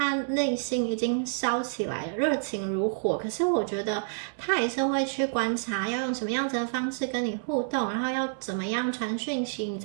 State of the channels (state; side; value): silent; left; 59 dB below the other